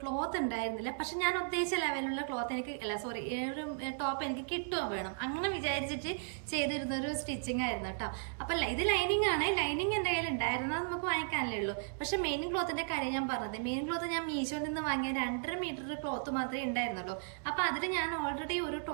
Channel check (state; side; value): silent; left; digital silence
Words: ക്ലോത്ത് ഉണ്ടായിരുന്നില്ല. പക്ഷെ ഞാൻ ഉദ്ദേശിച്ച ലെവലുള്ള ക്ലോത്ത് എനിക്ക് ഒരു ടോപ്പ് എനിക്ക് കിട്ടുകയും വേണം, അങ്ങനെ വിചാരിച്ചിട്ട് ചെയ്തിരുന്നൊരു സ്റ്റിച്ചിങ് ആയിരുന്നു കേട്ടോ. അപ്പം ഇത് ലൈനിങ് ആണ്, ലൈനിങ് എൻ്റെ കയ്യിൽ ഉണ്ടായിരുന്നത് നമുക്ക് വാങ്ങിക്കാനല്ലേ ഉള്ളൂ. പക്ഷെ മെയിൻ ക്ലോത്തിൻ്റെ കാര്യം ഞാൻ പറഞ്ഞത്, മെയിൻ ക്ലോത്ത് ഞാൻ മീഷോയിൽ നിന്ന് വാങ്ങിയ 2.5 മീറ്റർ ക്ലോത്ത് മാത്രമേ ഉണ്ടായിരുന്നുള്ളൂ. അപ്പം അതിൽ ഞാൻ ഓൾറെഡി ഒരു